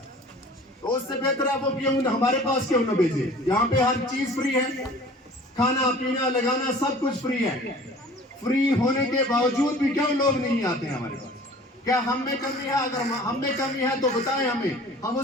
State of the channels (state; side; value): normal; both; correlation 0.46